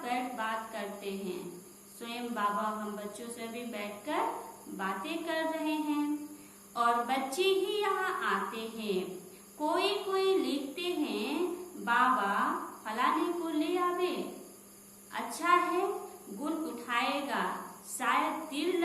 बैठ बात करते हैं। स्वयं बाबा हम बच्चों से भी बैठकर बातें कर रहे हैं और बच्चे ही यहाँ आते हैं। कोई कोई लिखते हैं बाबा फलाने को ले आवे, अच्छा है गुण उठाएगा, शायद तीर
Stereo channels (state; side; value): identical; both; correlation 1.00